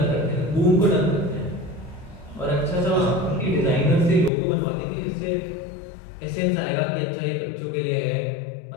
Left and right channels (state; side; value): drops out; right; at 4.3 s